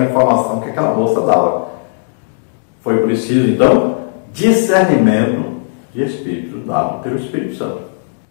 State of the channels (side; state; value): right; silent; digital silence